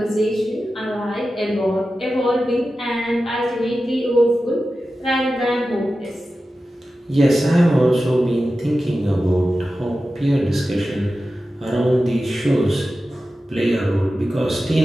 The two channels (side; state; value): both; normal; correlation 0.93